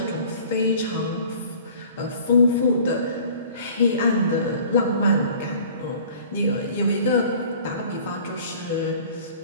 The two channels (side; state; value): both; inverted; correlation -0.48